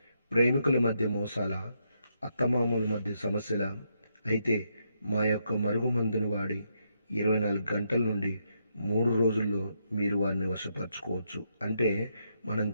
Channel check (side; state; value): both; inverted; correlation -0.79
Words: ప్రేమికుల మధ్య మోసాల, అత్తమామల మధ్య సమస్యల, అయితే మా యొక్క మరుగుమందును వాడి 24 గంటల నుండి 3 రోజుల్లో మీరు వారిని వశపరచుకోవచ్చు. అంటే మనం